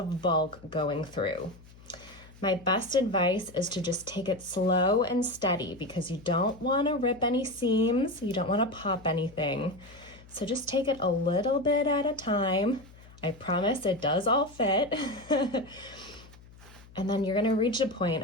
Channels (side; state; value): left; noise; hum, 22 dB below the sound